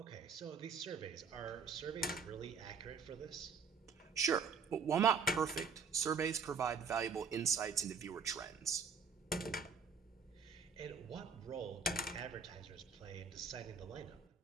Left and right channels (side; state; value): left; quieter; 5.6 dB